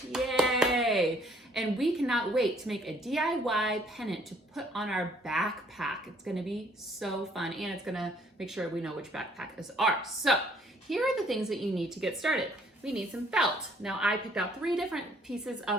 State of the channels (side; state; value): both; normal; correlation 0.62